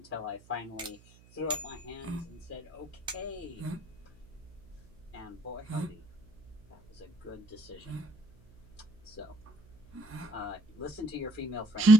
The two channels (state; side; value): noise; right; hum, 25 dB below the sound